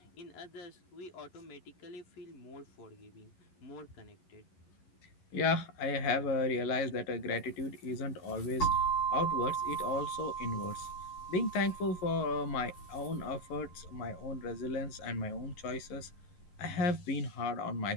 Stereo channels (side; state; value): right; late; 11 ms